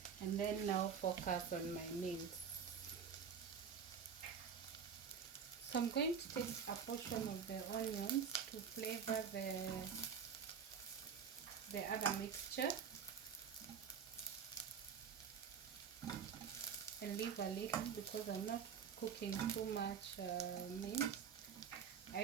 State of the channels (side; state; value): left; quieter; 6.9 dB